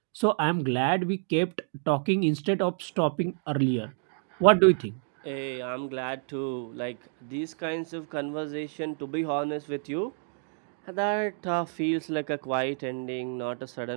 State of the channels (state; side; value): silent; left; 59 dB below the other